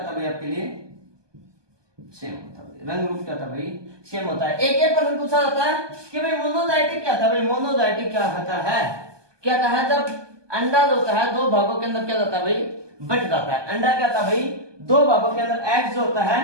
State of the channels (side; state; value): left; late; 1.2 ms